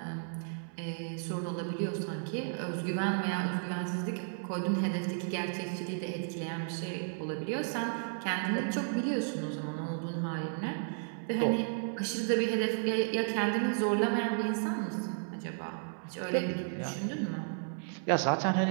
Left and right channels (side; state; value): left; silent; 55 dB below the other